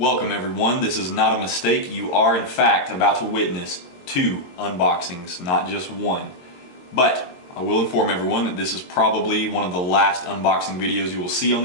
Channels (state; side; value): late; right; 22 ms